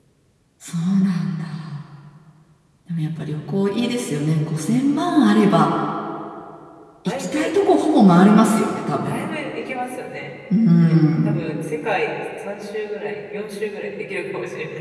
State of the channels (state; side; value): identical; both; correlation 1.00